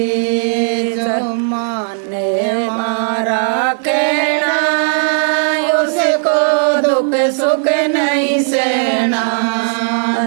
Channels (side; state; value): left; silent; digital silence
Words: जो माने मारा कहना उसको दुख सुख नहीं सहना